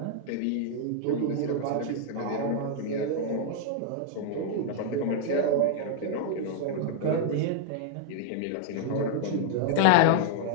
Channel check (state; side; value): different; both; correlation 0.00